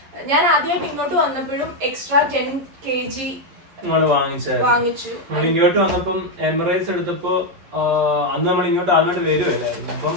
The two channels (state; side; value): late; left; 11 ms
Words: ഞാൻ ആദ്യമായിട്ട് ഇങ്ങോട്ട് വന്നപ്പോഴും എക്സ്ട്രാ 10 kg വാങ്ങിച്ചു. ഇങ്ങോട്ട് വന്നപ്പം എമിറേറ്റ്സ് എടുത്തപ്പോ അന്ന് നമ്മൾ ഇങ്ങോട്ട് ആദ്യമായിട്ട് വരുമല്ലായിരുന്നു. അപ്പം